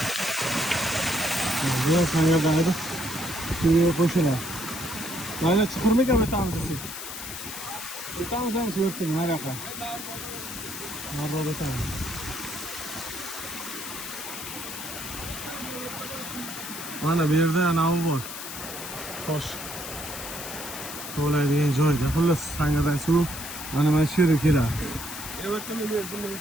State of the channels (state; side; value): noise; left; hiss, 8 dB below the sound